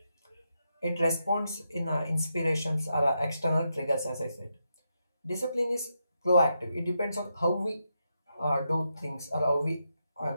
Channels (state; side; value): inverted; both; correlation -0.84